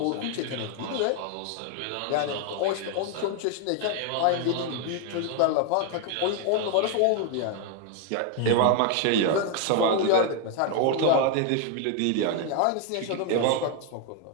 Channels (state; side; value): different; both; correlation 0.00